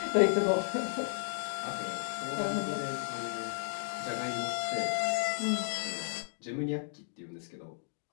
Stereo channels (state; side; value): silent; right; digital silence